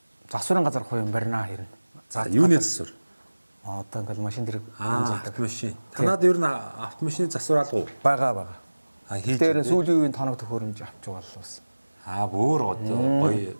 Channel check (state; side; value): inverted; both; correlation -1.00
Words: засварын газар хувийн барина хэрнэ. за юуны засвар Одоо ингээл машин дэрэг автомашин танад ер нь автомашины засвар алга уу байгаа. хийж Тэр сүүлийн үеийн тоног төхөөрөмж авч байгаа л бас. бүр гоё